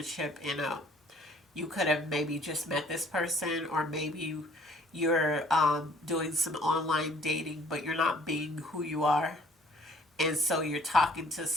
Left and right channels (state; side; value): normal; both; correlation 0.57